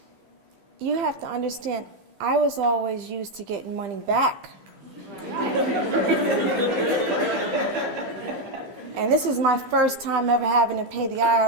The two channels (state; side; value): late; left; 15 ms